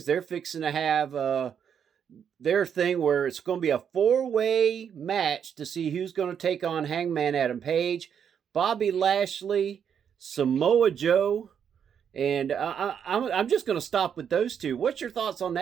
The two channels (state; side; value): quieter; left; 8.0 dB